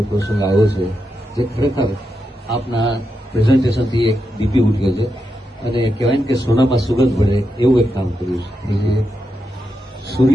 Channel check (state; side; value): normal; both; correlation 0.86